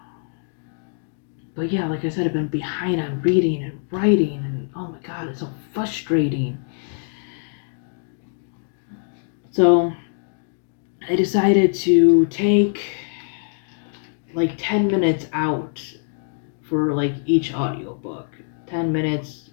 But yeah, like I said, I've been behind on reading and writing, and oh my god, it's so frustrating. So I decided to take like 10 minutes out for like each audiobook. 10 minutes,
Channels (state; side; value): silent; right; 63 dB below the other